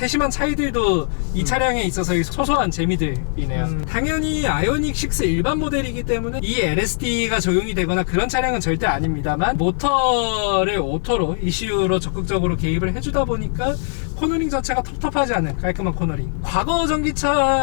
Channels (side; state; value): right; silent; digital silence